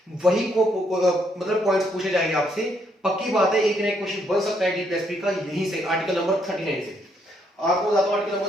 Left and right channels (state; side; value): normal; both; correlation 0.73